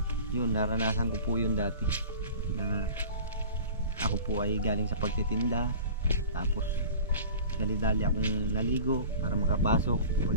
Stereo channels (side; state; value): both; inverted; correlation -0.40